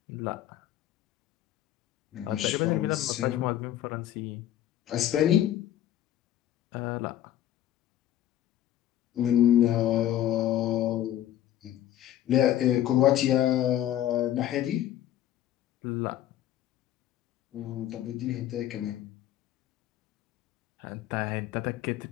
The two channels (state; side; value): quieter; right; 12.2 dB